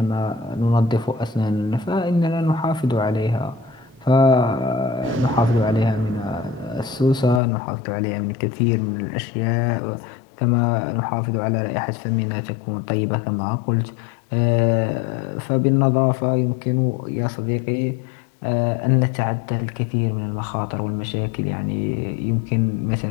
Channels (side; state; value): right; drops out; at 7.4 s